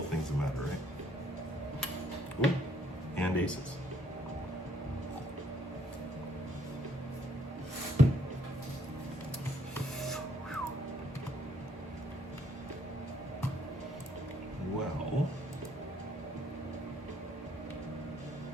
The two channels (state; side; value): normal; both; correlation 0.68